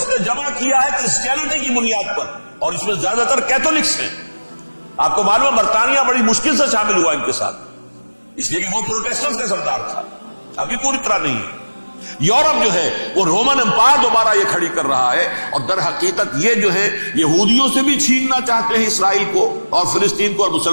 نے جمع کیا ہے کرسچینٹی کی بنیاد پر، اور اس میں زیادہ تر کیتھولکس ہیں. آپ کو معلوم ہے برطانیہ بڑی مشکل سے شامل ہوا ان کے ساتھ، اس لیے کہ وہ پروٹیسٹنٹس کا سردار تھا، ابھی پوری طرح نہیں ہے. یورپ جو ہے وہ رومن امپائر دوبارہ یہ کھڑی کر رہا ہے، اور در حقیقت یہ جو ہے یہودیوں سے بھی چھیننا چاہتے ہیں اسرائیل کو اور فلسطین کو اور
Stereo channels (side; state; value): both; inverted; correlation -1.00